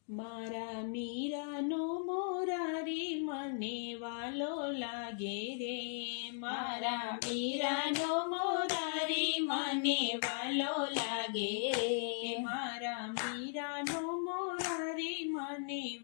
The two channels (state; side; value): silent; right; digital silence